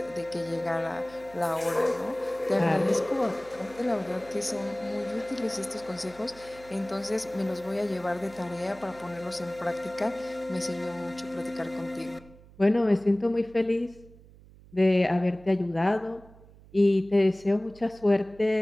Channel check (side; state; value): right; noise; hum, 23 dB below the sound